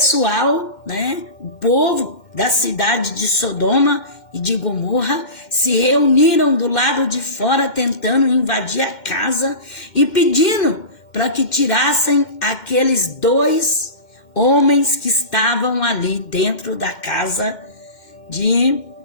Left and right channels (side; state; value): right; late; 2.1 ms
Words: o povo da cidade de Sodoma e de Gomorra se reuniram do lado de fora tentando invadir a casa e pedindo para que tirassem aqueles 2 homens que estavam ali dentro da casa de